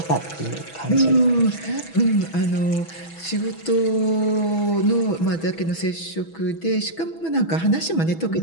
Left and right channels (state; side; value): late; right; 6.1 ms